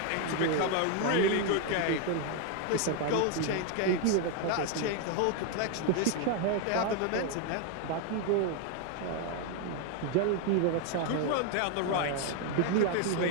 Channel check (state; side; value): different; both; correlation 0.01